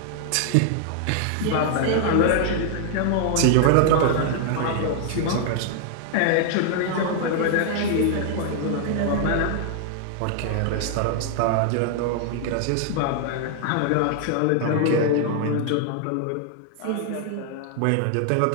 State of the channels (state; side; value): different; both; correlation 0.00